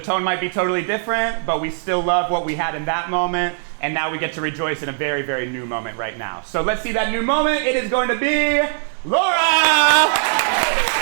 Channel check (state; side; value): silent; left; digital silence